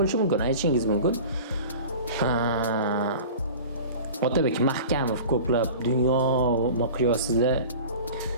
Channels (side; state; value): both; inverted; correlation -0.38